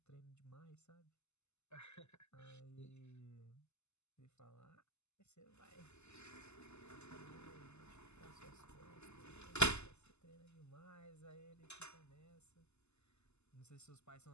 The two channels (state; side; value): late; right; 0.81 ms